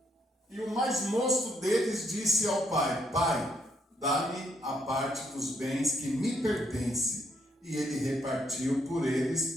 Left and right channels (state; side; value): normal; both; correlation 0.73